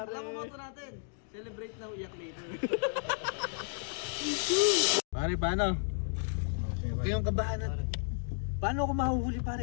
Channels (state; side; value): silent; right; digital silence